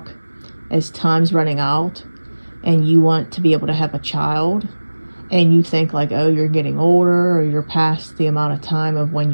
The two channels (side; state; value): both; inverted; correlation -1.00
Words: as time's running out, and you want to be able to have a child, and you think like, oh, you're getting older or you're past the amount of time of when